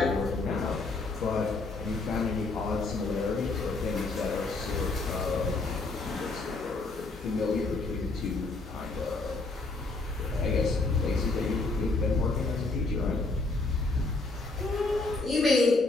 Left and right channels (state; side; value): quieter; right; 3.5 dB